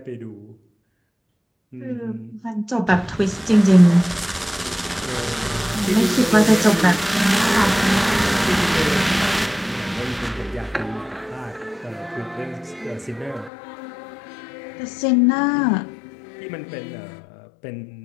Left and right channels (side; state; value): right; drops out; at 13.5 s